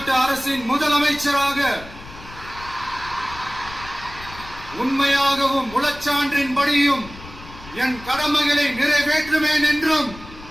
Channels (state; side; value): noise; left; rumble, 17 dB below the sound